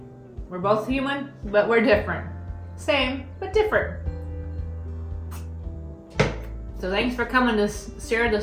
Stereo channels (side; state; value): both; identical; correlation 1.00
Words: We're both human, but we're different. Same, but different. So thanks for coming to share